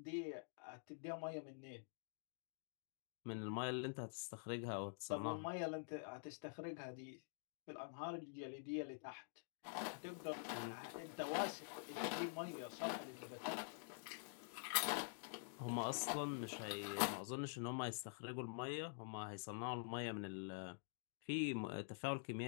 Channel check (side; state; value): right; silent; digital silence